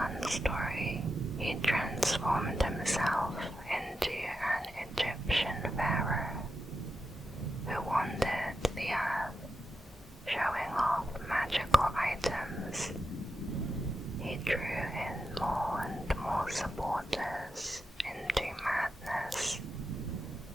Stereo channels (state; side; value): normal; both; correlation 0.88